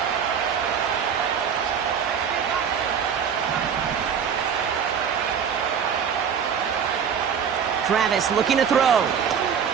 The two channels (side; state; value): left; quieter; 7.4 dB